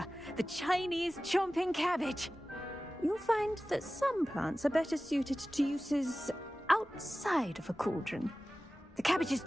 the Chinese chomping cabbage. You'll find that some plants are better suited to uses outside of a cauldron. The cabbages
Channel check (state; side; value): normal; both; correlation 0.96